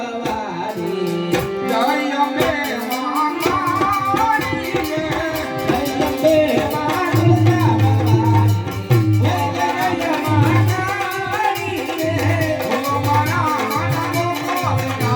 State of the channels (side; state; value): both; identical; correlation 1.00